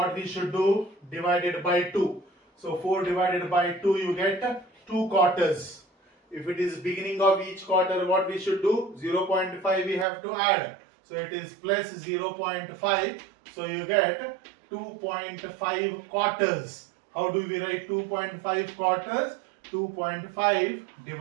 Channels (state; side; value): drops out; left; at 10.1 s